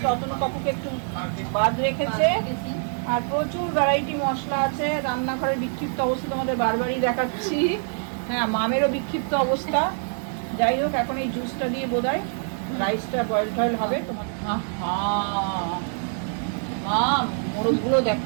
অতনু কাকুকে একটু বাদ রেখেছে। আর প্রচুর ভ্যারাইটি মশলা আছে। রান্নাঘরের বিক্ষিপ্ত অবস্থা তোমাদের বারবারই দেখাচ্ছি। হ্যাঁ, মামেরও বিক্ষিপ্ত অবস্থা। যাই হোক, এখন এই জুসটা দিয়ে বোধহয় রাইসটা বয়েল টয়েল হবে। তোমার মাম মোরগগুলো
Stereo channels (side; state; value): left; silent; 56 dB below the other